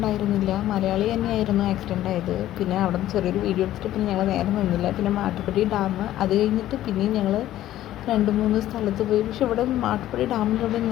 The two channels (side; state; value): right; quieter; 13.5 dB